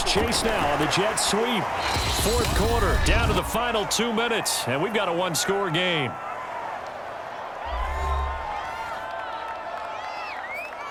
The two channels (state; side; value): identical; both; correlation 1.00